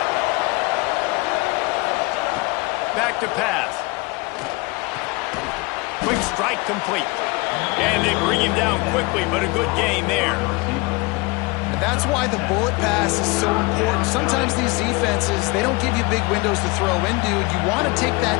Back to pass. Quick strike complete. And they bring him down quickly, but a good gain there. And that's why the bullet pass is so important. Sometimes these defenses, they don't give you big windows to throw into. You want to take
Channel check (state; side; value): quieter; right; 25.8 dB